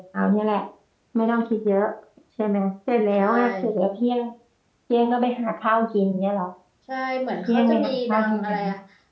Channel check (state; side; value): identical; both; correlation 1.00